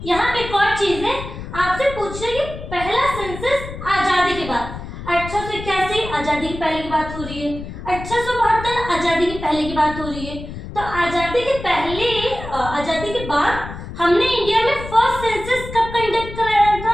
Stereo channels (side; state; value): left; noise; rumble, 10 dB below the sound